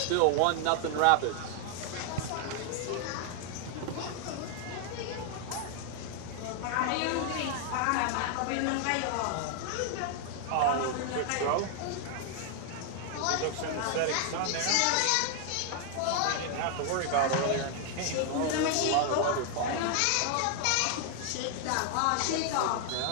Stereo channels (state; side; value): different; both; correlation 0.00